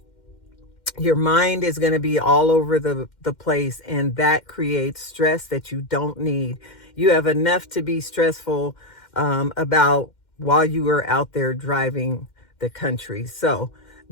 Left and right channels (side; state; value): right; late; 2.1 ms